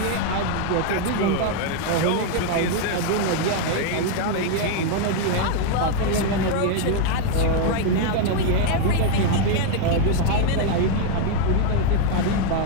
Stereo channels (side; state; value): both; different; correlation 0.01